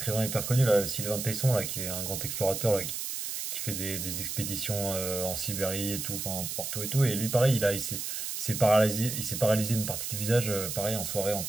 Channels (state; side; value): noise; right; hiss, 4 dB below the sound